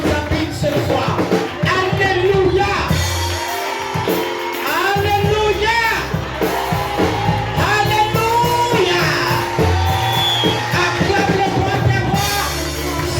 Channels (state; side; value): identical; both; correlation 1.00